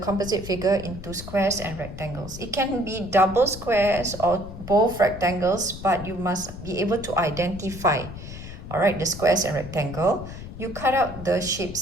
figure into squares and rectangles. It can be double squares or both rectangles, but you must be able to identify, all right, the squares and rectangle. You cut out the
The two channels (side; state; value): left; noise; rumble, 12 dB below the sound